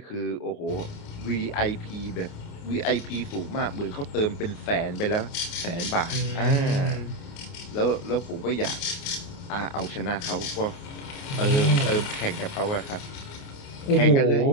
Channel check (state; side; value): late; right; 29 ms